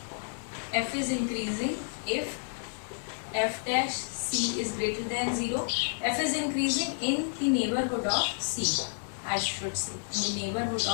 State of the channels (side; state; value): right; silent; digital silence